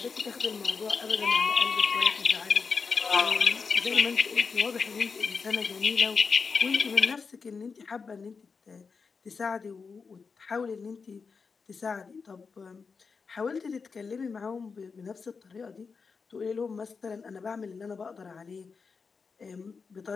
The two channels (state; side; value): quieter; right; 5.1 dB